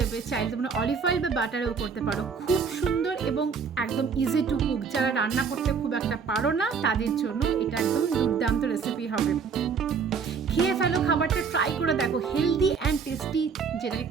চাইলে তোমরা অলিভ অয়েল বা বাটারেও করতে পারো। খুব সুন্দর এবং একদম ইজি টু কুক। যারা রান্না করতে খুব একটা পারো না তাদের জন্য এটা একদম দুর্দান্ত রেসিপি হবে। খেয়ে ফেলো, খাবারটা ট্রাই করে দেখো। হেলদি অ্যান্ড টেস্টি, যেটাকে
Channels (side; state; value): left; quieter; 5.9 dB